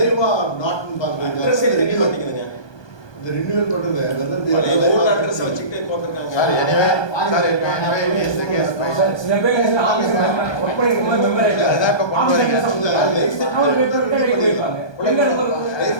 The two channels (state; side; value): late; right; 1.2 ms